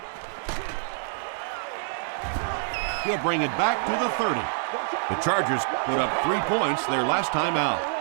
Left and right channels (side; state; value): left; silent; digital silence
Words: He'll bring it back to the 30. The Chargers put up 3 points their last time out.